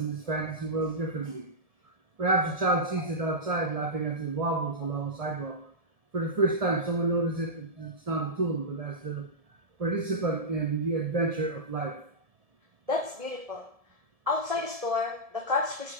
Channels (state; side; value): late; left; 1.7 ms